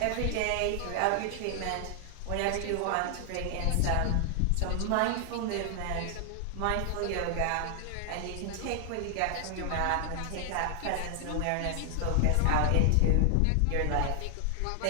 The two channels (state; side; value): different; both; correlation 0.00